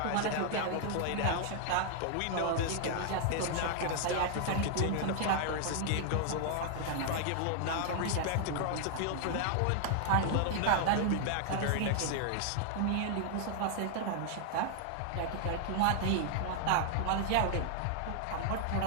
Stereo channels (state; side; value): different; both; correlation 0.00